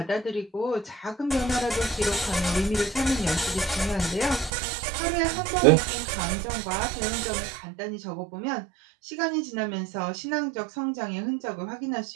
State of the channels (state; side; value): drops out; left; at 4.5 s